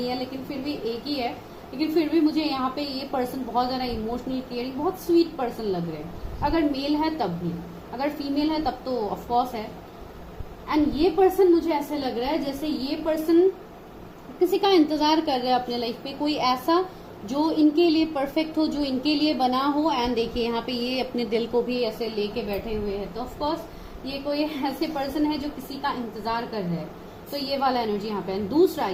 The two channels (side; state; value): both; identical; correlation 1.00